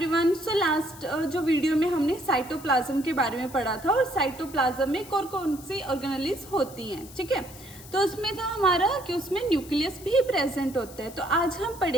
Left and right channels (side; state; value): left; noise; hiss, 18 dB below the sound